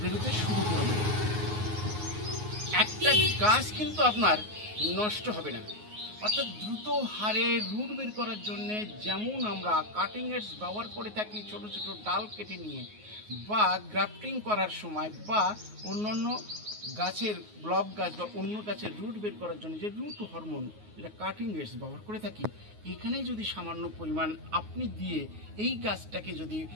শুরু করবে। একটা গাছ কিন্তু আপনার নষ্ট হবে না, অর্থাৎ দ্রুত হারে রুট বের করার জন্য যেমন আমরা কাটিং এডস ব্যবহার করে থাকি, ছোট ছোট ডাল কেটে নিয়ে বা গ্রাফটিং করার সময় বা অন্যান্য গাছের ব্লক গাছ বা অন্য গাছের রুট বের করার জন্য যে রুট হরমোন যেটা কাটিং এডস ব্যবহার করে থাকি, এখানেই যদি সামান্য পরিমাণ আপনি দিয়ে এই গাছটাকে যদি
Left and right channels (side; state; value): left; late; 9.5 ms